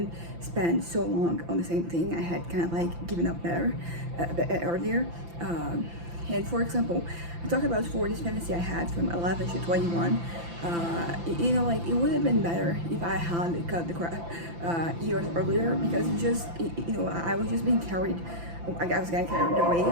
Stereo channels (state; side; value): late; left; 5.9 ms